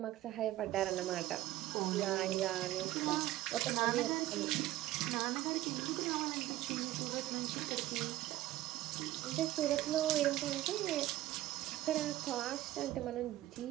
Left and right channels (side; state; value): left; quieter; 15.5 dB